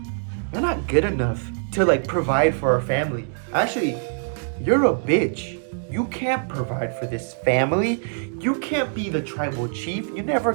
you're not good enough to provide for our family. Actually, you're a bitch. You can't provide for this family. You can't be the tribal chief. You never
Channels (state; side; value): silent; left; digital silence